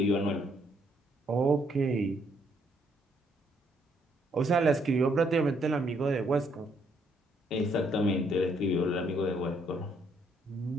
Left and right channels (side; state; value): both; normal; correlation 0.70